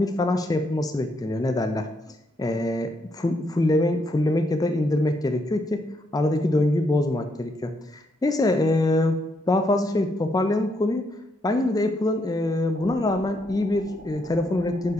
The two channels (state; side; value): normal; both; correlation 0.76